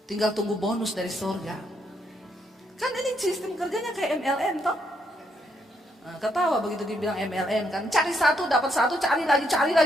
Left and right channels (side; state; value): both; normal; correlation 0.75